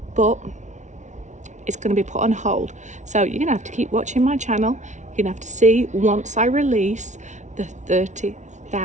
but it's going to be put on hold. So you're going to have to keep watching my channel. You're going to have to see once I release the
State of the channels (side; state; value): left; late; 0.35 ms